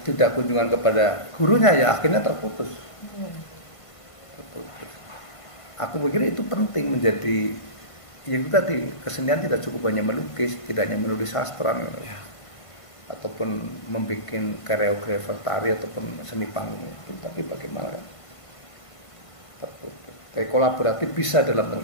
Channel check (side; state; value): right; late; 1.5 ms